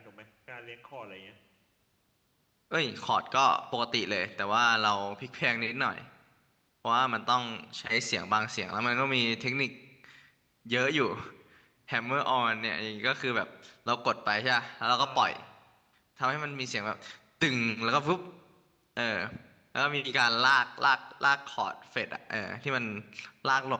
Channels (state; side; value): identical; both; correlation 1.00